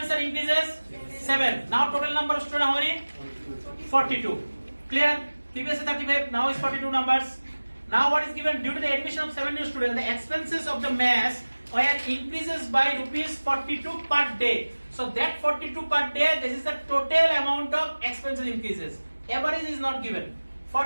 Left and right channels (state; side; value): inverted; both; correlation -1.00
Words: are increases? 7. Now total number of students how many? 42. Clear? Previously 35, now is 42 numbers. Now what is given? Due to the admission of 7 new students, the expenses of the mess were increases by rupees 42 per day. So that 42 per day, this is the total amount of expenses increases. Average is not given.